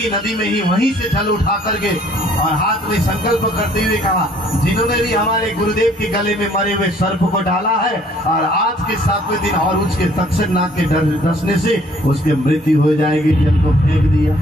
नदी में ही वहीं से जल उठा करके और हाथ में संकल्प करते हुए कहा, जिन्होंने भी हमारे गुरुदेव के गले में मरे हुए सर्प को डाला है और आज के 7वें दिन और उसके तक्षक नाग के डसने से उसकी मृत्यु हो जाएगी, जल को फेंक दिया।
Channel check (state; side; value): normal; both; correlation 0.59